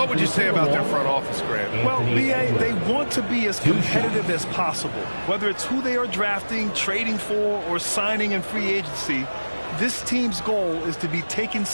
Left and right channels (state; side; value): inverted; both; correlation -1.00